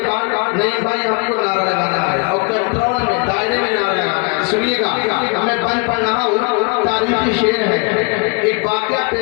بعد نہیں بھائی ہم کو نعرہ لگانا ہے اور کنٹرول میں دائرے میں نعرہ لگانا ہے سنیے گا میں بند پڑھ رہا ہوں تاریخی شعر ہے ایک واقعہ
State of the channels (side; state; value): right; quieter; 32.7 dB